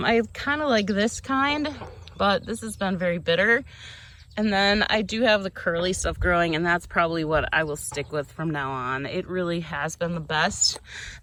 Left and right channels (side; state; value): both; identical; correlation 1.00